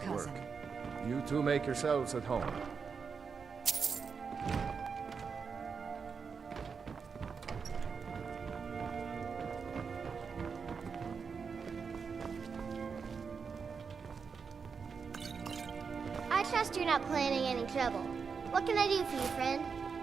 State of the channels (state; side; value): quieter; left; 5.7 dB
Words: to work. cousin. You two make yourselves at home. I trust you're not planning any trouble. What can I do for you, friend?